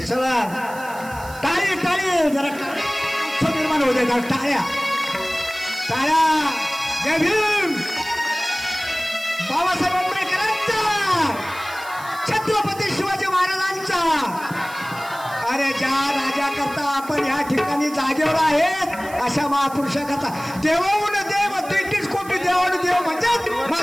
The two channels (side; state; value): right; noise; hiss, 18 dB below the sound